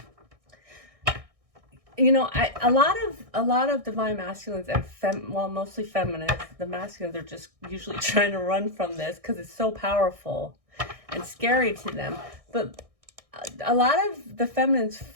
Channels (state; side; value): late; left; 1.6 ms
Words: you know, a lot of divine masculines and mostly feminists, the masculines are just usually trying to run from this because it's so powerful and scary to them. But a lot of the feminines